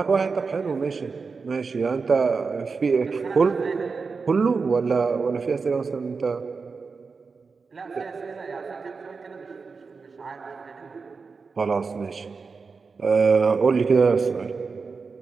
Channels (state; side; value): quieter; left; 4.8 dB